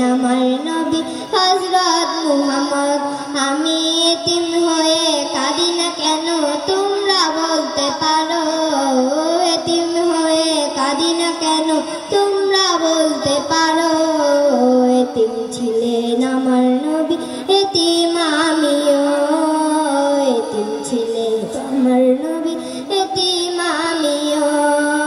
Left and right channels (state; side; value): identical; both; correlation 1.00